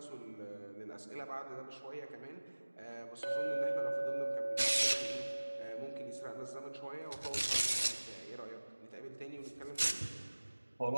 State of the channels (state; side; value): inverted; both; correlation -1.00